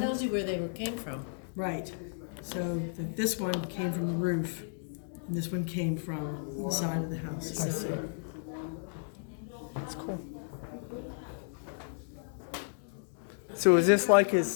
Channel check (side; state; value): right; silent; digital silence